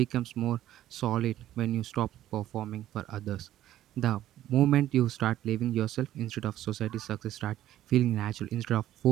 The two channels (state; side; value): quieter; left; 13.0 dB